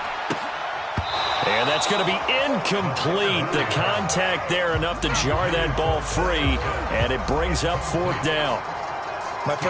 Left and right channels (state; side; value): identical; both; correlation 1.00